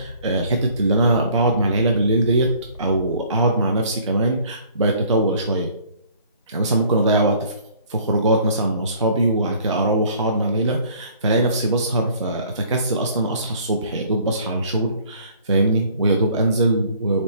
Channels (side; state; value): both; inverted; correlation -0.55